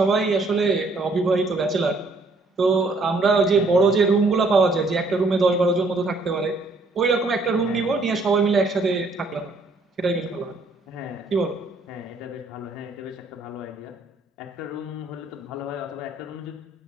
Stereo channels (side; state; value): left; quieter; 3.1 dB